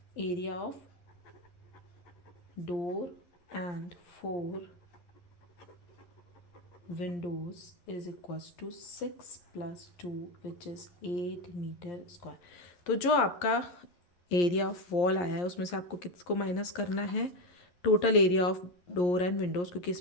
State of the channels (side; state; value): right; late; 11 ms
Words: door and 4 windows is equals to 6 plus 2 which is 8 metre square. तो जो आपका एरिया ऑफ वॉल आया है उसमें से आपको किसको माइनस करना है, total area of door and Windows, क्योंकि इस